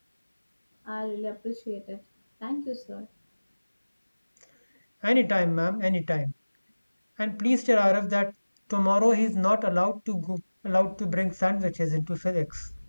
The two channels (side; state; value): both; inverted; correlation -1.00